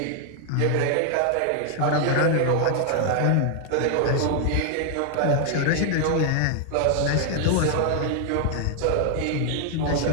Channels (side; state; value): both; different; correlation 0.00